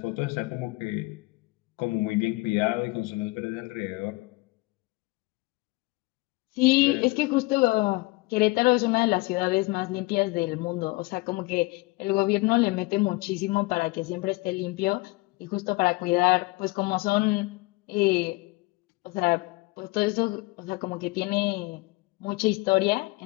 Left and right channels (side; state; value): right; quieter; 24.0 dB